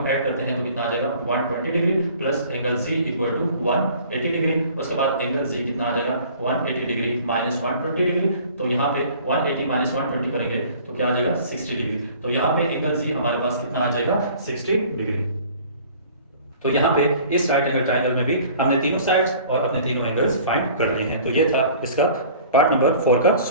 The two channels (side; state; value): both; inverted; correlation -0.49